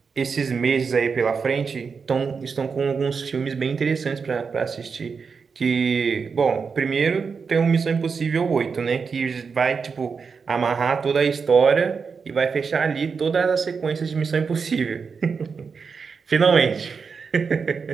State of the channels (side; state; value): left; quieter; 5.5 dB